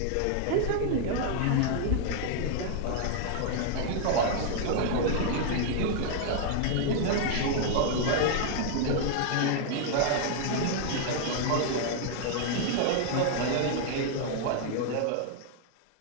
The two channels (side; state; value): both; different; correlation 0.00